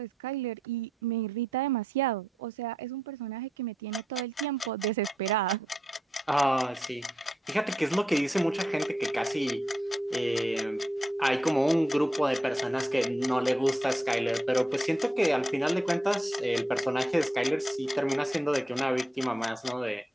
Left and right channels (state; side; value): normal; both; correlation 0.82